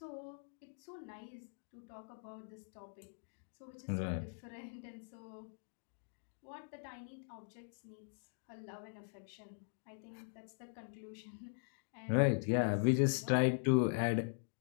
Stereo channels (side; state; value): right; silent; digital silence